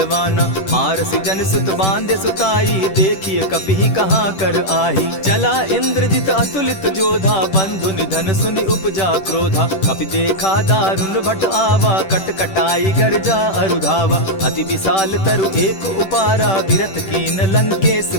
मारसी जन सुत बांधे सुताई, देखिए कपि कहाँ कर आही। चला इंद्रजित अतुलित जोधा, बंधु निधन सुनि उपजा क्रोधा। कपि देखा दारुण भट आवा, कट कटाई गर्जा अरुधावा। अति विशाल तरु एक उपारा, विरत कीन लंकेश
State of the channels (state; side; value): late; right; 10 ms